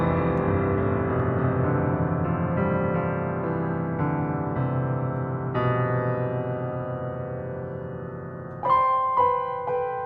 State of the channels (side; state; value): both; identical; correlation 1.00